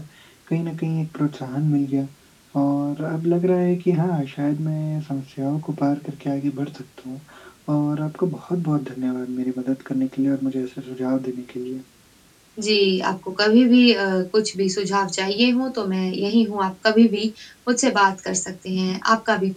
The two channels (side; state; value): both; identical; correlation 1.00